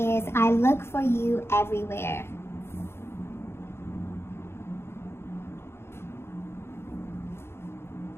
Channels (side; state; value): right; late; 0.12 ms